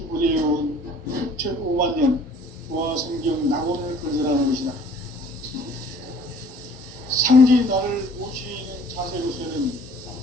6,5만 년 조화 성경 낙원을 건설하는 것이다. 상제인 나를 모시는 자세로서는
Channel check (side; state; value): both; normal; correlation 0.54